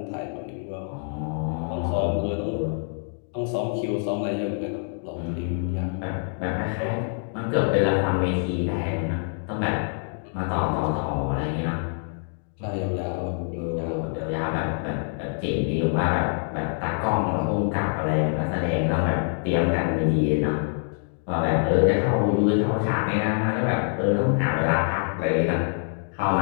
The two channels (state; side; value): silent; right; 61 dB below the other